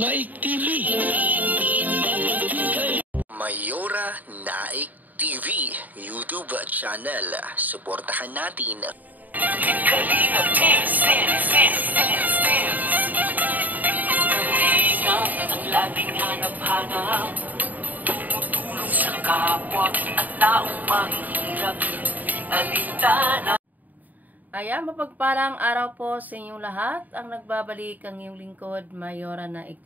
TV. Mayora Naik TV YouTube channel. Suportahan natin. Kalingap ang laging hanap-hanap, tumutulong sa kapwa at taong mahihirap. Alintana. Ayan, mapagpalang araw po sa inyong lahat. Ang nagbabalik ang iyong lingkod, Mayora Naik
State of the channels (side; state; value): left; late; 0.082 ms